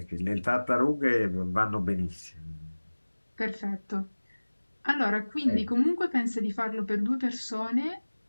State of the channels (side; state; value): both; inverted; correlation -1.00